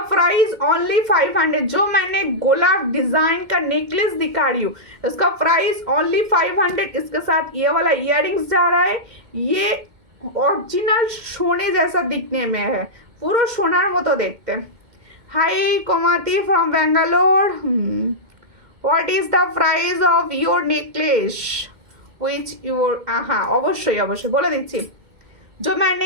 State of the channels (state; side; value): late; left; 2.1 ms